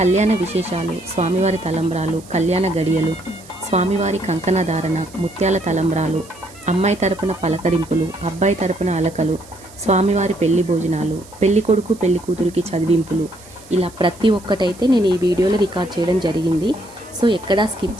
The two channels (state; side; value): noise; right; hiss, 22 dB below the sound